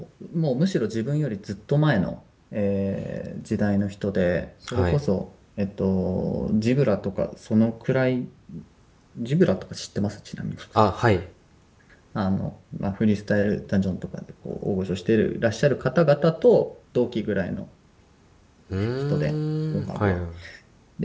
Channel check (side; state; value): both; identical; correlation 1.00